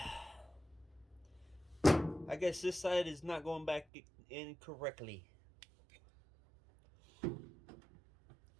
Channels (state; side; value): drops out; left; at 3.9 s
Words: I guess this side is not going back in correctly.